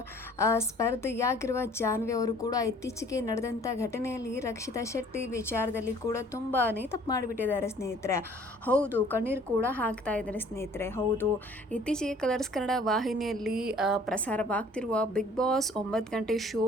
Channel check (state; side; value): normal; both; correlation 0.54